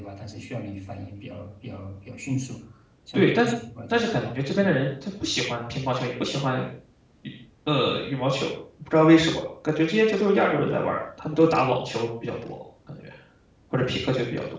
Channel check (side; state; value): both; identical; correlation 1.00